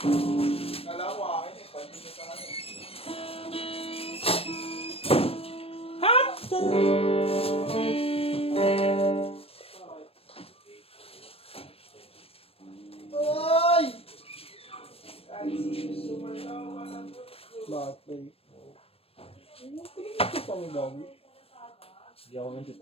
Bakit ba eh? Ito pa mo bago. Hindi ako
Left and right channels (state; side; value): late; right; 0.28 ms